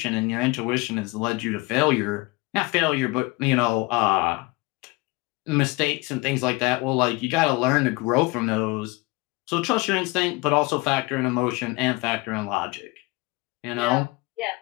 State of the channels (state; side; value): quieter; right; 24.1 dB